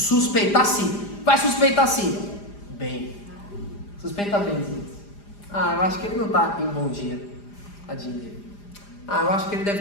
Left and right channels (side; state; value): right; late; 4.9 ms